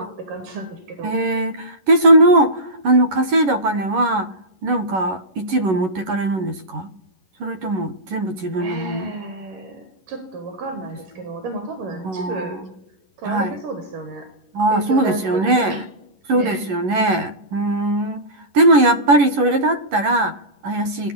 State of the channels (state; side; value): late; left; 11 ms